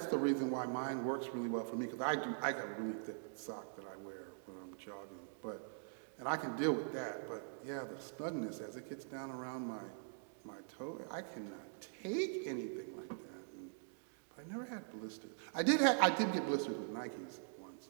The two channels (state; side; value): silent; left; digital silence